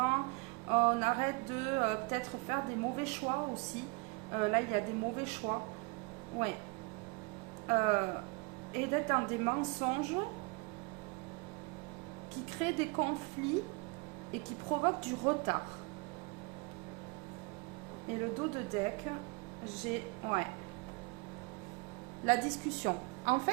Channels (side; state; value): left; quieter; 28.5 dB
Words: on arrête de peut-être faire des mauvais choix aussi. Là, il y a des mauvais choix. Ouais. Et d'être dans des mensonges qui créent des conflits et qui provoquent du retard. Et le dos de deck, j'ai... Ouais. La discussion. En